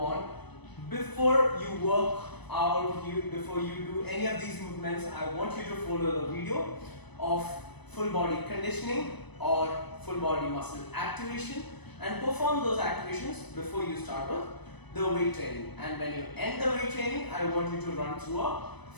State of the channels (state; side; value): late; right; 0.99 ms